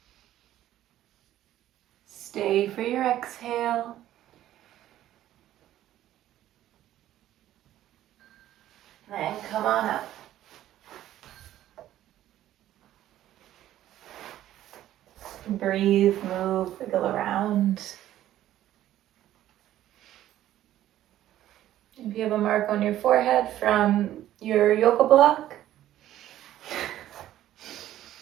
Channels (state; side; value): quieter; left; 13.0 dB